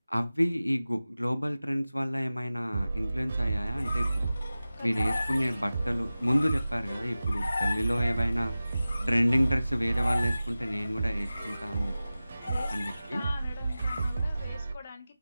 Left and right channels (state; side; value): inverted; both; correlation -0.96